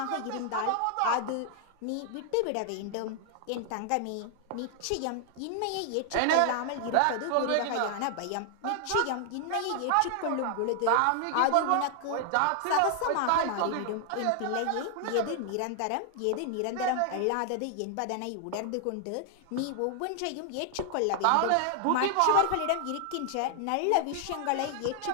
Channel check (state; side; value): different; both; correlation 0.00